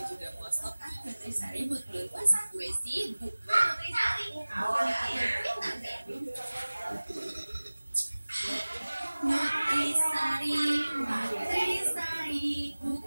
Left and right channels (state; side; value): inverted; both; correlation -1.00